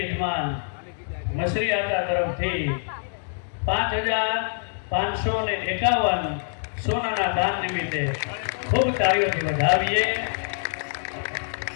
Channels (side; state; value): right; silent; digital silence